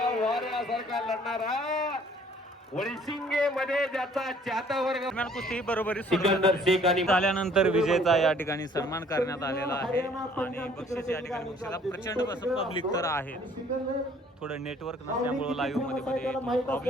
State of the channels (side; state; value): both; normal; correlation 0.58